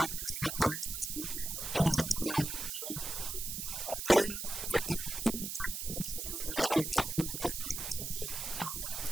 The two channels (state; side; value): noise; right; hiss, 4 dB below the sound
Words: of letting us know ahead of time. And we would in very rare situations, would we ever not be inclined to